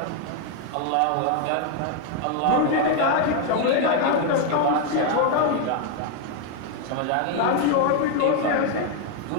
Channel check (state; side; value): different; both; correlation 0.01